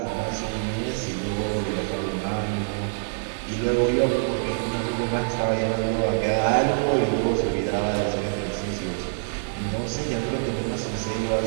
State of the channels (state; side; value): silent; left; digital silence